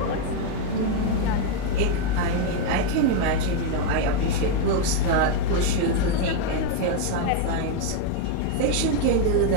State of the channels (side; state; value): both; different; correlation 0.01